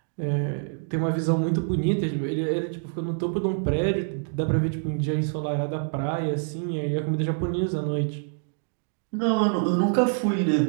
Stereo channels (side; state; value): left; silent; 61 dB below the other